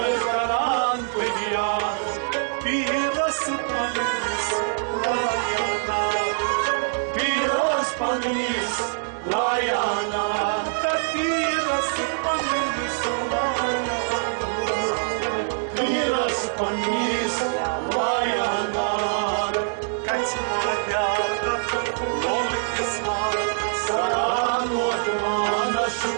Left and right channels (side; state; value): left; silent; digital silence